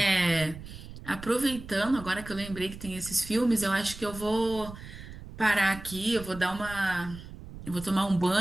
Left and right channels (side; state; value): right; noise; rumble, 14 dB below the sound